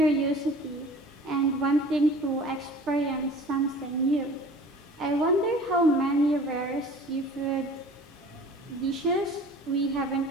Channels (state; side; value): normal; both; correlation 0.45